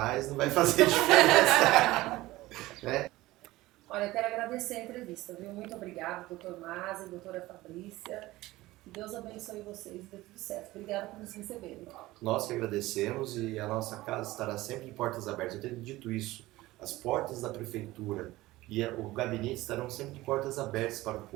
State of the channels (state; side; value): quieter; left; 18.2 dB